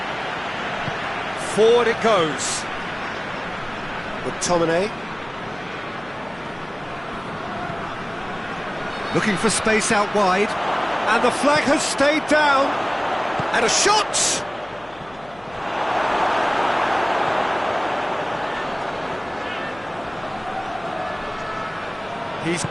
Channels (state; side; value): noise; left; hum, 24 dB below the sound